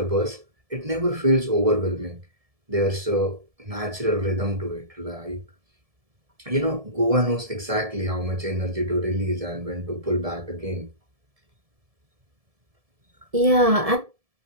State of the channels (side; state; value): left; late; 1.7 ms